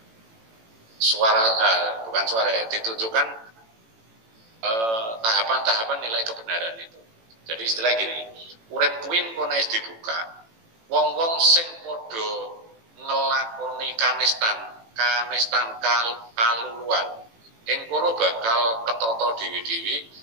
ditunjukkan tahapan-tahapan nilai kebenaran itu. Jadi istilah gini, urip kuwi kono wis dibuka, wong-wong sing padha ngelakoni kanistan kaluluan, ing kono bakal ketata dewi-dewi,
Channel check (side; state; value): left; late; 18 ms